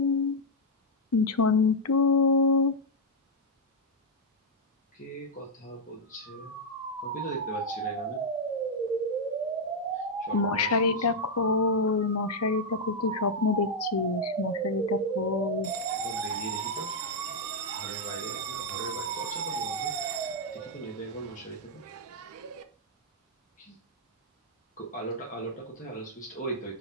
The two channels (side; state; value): both; normal; correlation -0.02